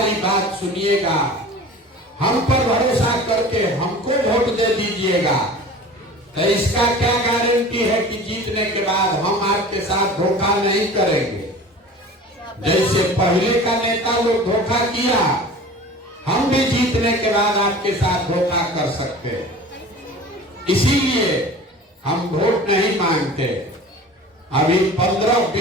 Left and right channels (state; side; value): normal; both; correlation 0.40